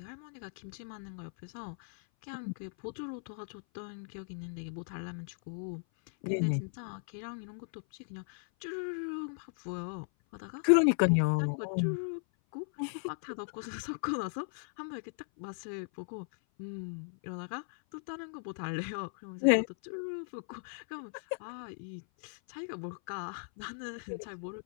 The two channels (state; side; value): silent; right; 53 dB below the other